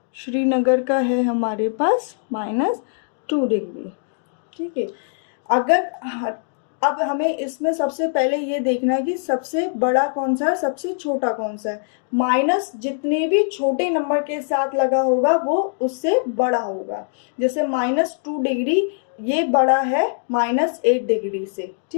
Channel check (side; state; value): right; silent; digital silence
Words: श्रीनगर का है हमारे पास -2 डिग्री. ठीक है. अगर अब हमें इसमें सबसे पहले ये देखना है कि सबसे बड़ा कौन सा है, सबसे छोटा कौन सा है. माइनस जितने भी छोटे नंबर के साथ लगा होगा वो उससे बड़ा होगा. जैसे -2 डिग्री ये बड़ा है -8 डिग्री से.